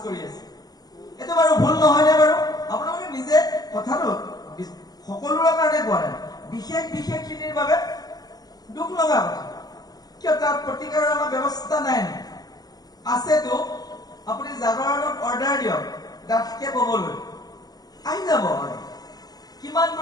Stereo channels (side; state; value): right; late; 0.19 ms